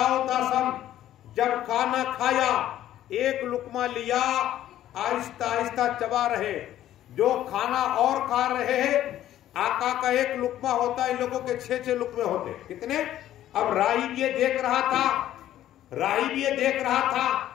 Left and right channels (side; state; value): right; quieter; 12.6 dB